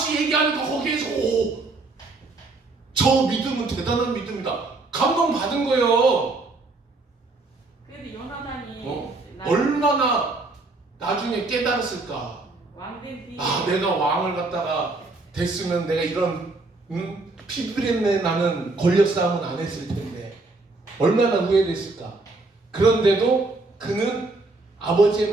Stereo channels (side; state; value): left; quieter; 3.3 dB